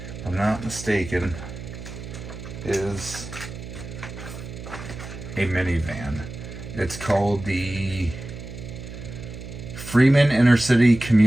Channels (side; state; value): right; noise; hum, 11 dB below the sound